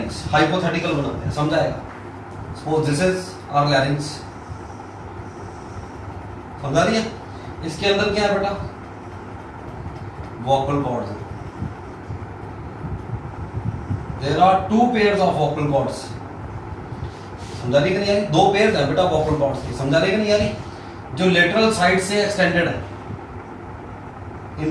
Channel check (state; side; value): identical; both; correlation 1.00